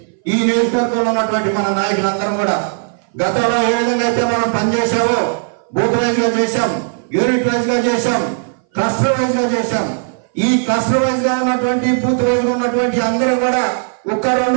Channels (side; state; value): left; silent; 60 dB below the other